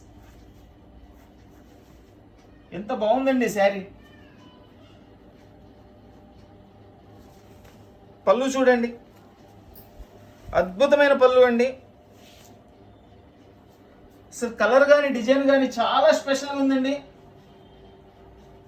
ఎంత బాగుందండి శారీ. పళ్ళు చూడండి, అద్భుతమైన పళ్ళు అండి. అసలు కలర్ కానీ డిజైన్ కానీ చాలా స్పెషల్గా ఉందండి.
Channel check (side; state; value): both; identical; correlation 1.00